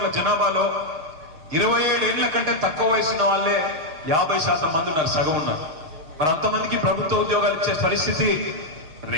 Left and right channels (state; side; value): late; left; 6.4 ms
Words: జనాభాలో 27 ఏళ్ల కంటే తక్కువ వయసున్న వాళ్ళే 50% మంది ఉన్నారు, సగం ఉన్నారు. మరి అంతమందికి ప్రభుత్వ ఉద్యోగాలు ఇచ్చే పరిస్థితి